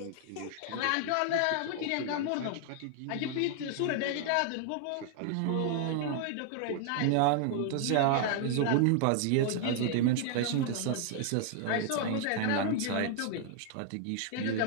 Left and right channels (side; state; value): both; different; correlation 0.00